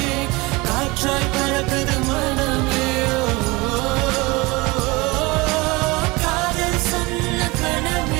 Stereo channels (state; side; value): quieter; left; 23.8 dB